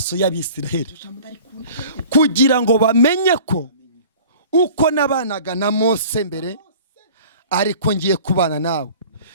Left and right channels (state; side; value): inverted; both; correlation -0.45